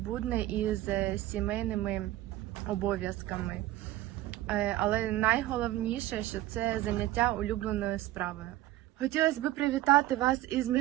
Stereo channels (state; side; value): quieter; left; 15.5 dB